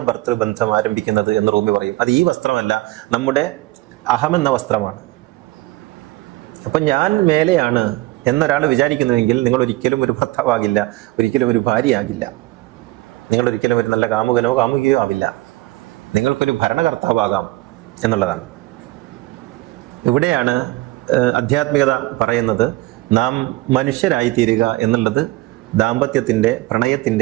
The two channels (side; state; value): left; quieter; 19.5 dB